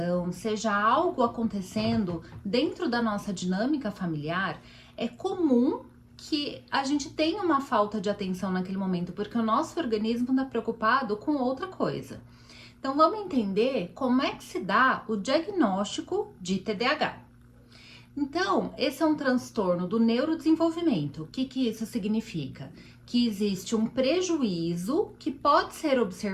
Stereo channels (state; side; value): identical; both; correlation 1.00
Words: seja algo acontecendo dentro da nossa dinâmica familiar, é comum que a gente tenha uma falta de atenção naquele momento, porque o nosso organismo está preocupado com outra coisa. Então vamos entender como é que se dá o diagnóstico de TDAH. Então, esse é um transtorno do neurodesenvolvimento. O que isso significa? Que existe um prejuízo que pode ser